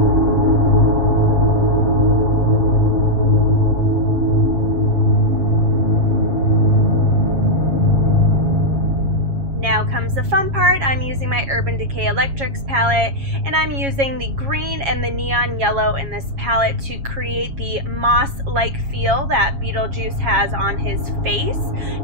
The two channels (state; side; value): late; left; 7.3 ms